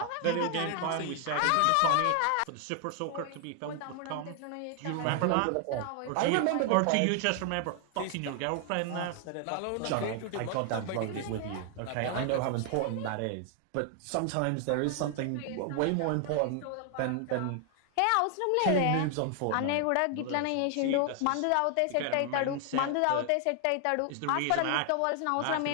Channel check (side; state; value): both; different; correlation 0.00